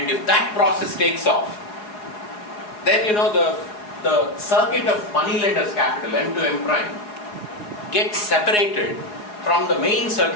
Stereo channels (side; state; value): right; late; 4.8 ms